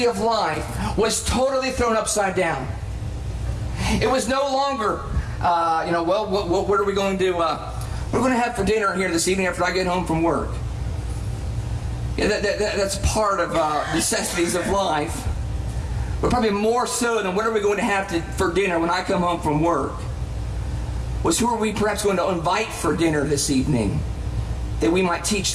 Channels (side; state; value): both; identical; correlation 1.00